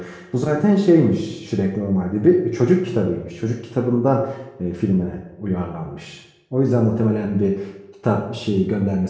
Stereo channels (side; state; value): both; identical; correlation 1.00